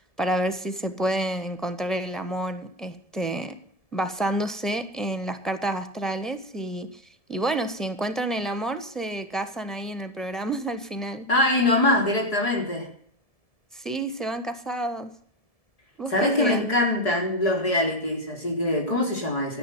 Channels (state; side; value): late; right; 1.7 ms